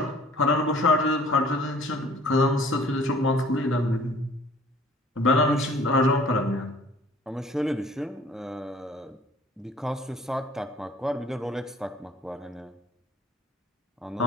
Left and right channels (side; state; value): both; normal; correlation 0.53